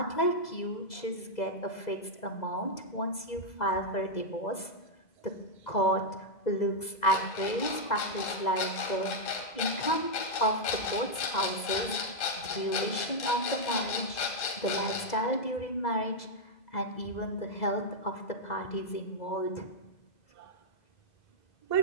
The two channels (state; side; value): late; right; 2.0 ms